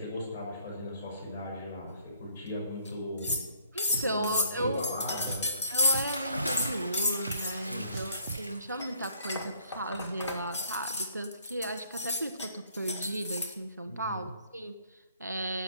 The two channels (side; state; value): both; inverted; correlation -0.61